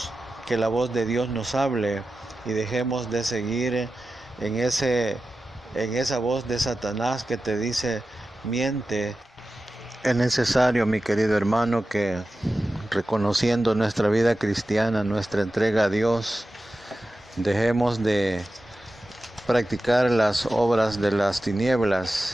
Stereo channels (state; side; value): normal; both; correlation 0.93